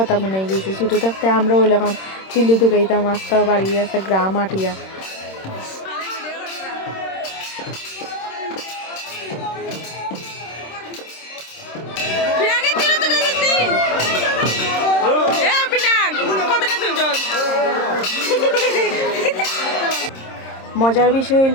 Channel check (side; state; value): right; late; 26 ms